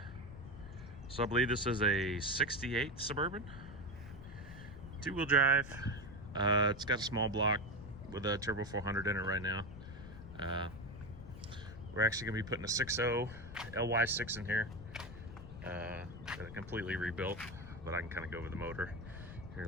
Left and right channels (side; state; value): left; noise; rumble, 13 dB below the sound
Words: So I believe this is a 68 Suburban, two-wheel drive. It's got a small block with a turbo 400 in it right now. We're actually going to be putting a 6.0 LY6 in here. Got it completely rebuilt, but I can kind of go over the motor here